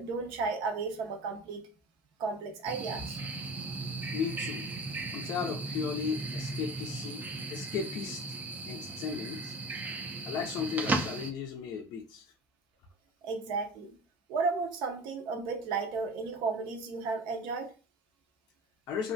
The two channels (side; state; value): both; normal; correlation 0.36